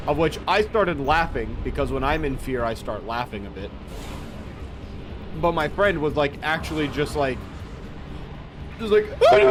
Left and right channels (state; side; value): identical; both; correlation 1.00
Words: Of which I started laughing, because when I'm in fear, I start laughing a bit. But my friend was like, actually just like put